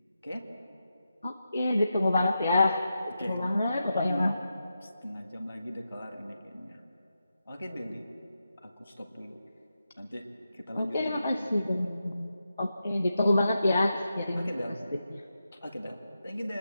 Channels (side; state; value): both; inverted; correlation -0.88